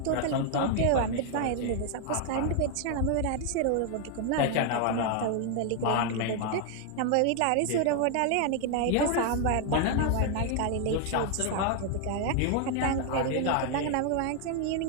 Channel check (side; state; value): both; different; correlation 0.00